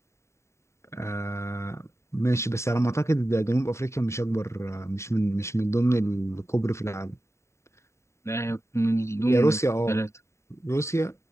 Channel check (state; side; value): late; right; 0.14 ms